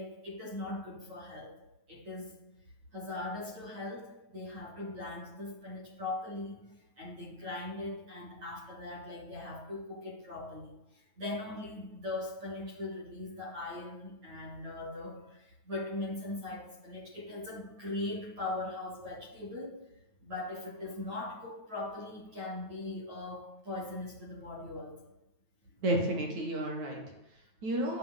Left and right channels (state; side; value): late; left; 9.2 ms